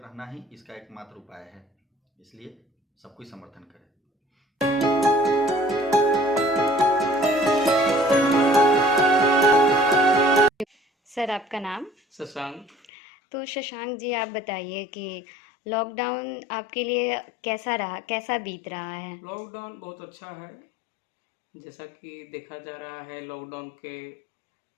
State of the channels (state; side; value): drops out; right; at 12.9 s